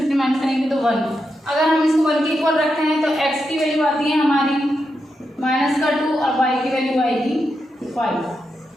माइनस करेंगे तो 1। अगर हम इसको 1 के इक्वल रखते हैं तो x की वैल्यू आती है हमारी माइनस का 2 और y की वैल्यू आएगी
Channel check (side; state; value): both; normal; correlation 0.86